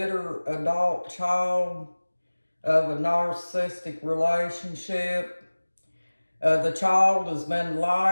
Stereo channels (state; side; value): inverted; both; correlation -1.00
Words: adult child of a narcissistic relationship. The child has been